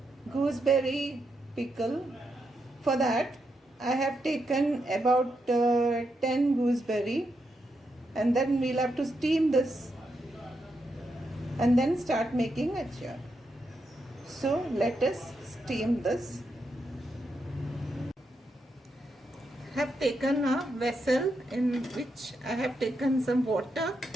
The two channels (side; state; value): both; normal; correlation 0.83